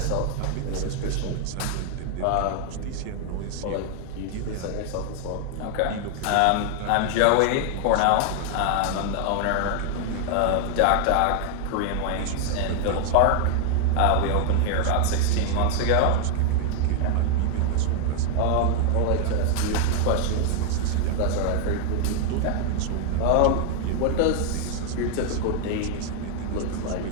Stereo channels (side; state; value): both; different; correlation 0.00